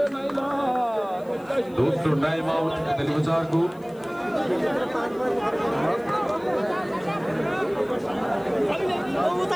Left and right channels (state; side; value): noise; left; hiss, 29 dB below the sound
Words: दोस्तों टाइम आउट दिल्ली बाजार को